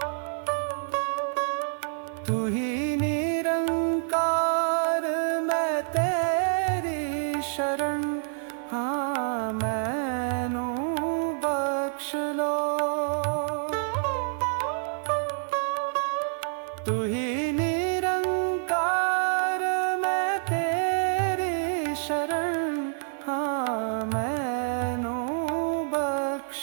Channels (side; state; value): left; silent; digital silence